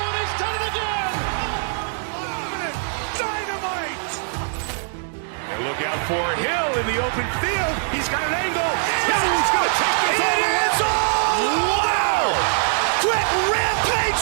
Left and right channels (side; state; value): left; silent; 64 dB below the other